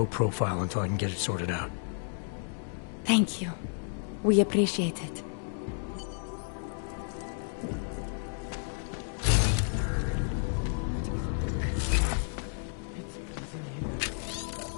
profile until I can get it sorted out. Thank you. We appreciate it.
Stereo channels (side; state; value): right; silent; digital silence